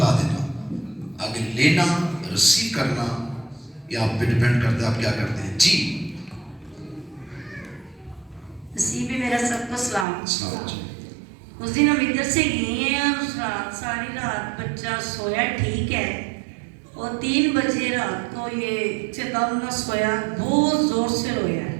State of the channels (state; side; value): drops out; left; at 10.1 s